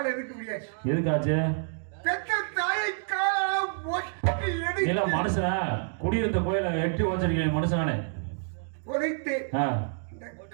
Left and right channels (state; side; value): silent; left; digital silence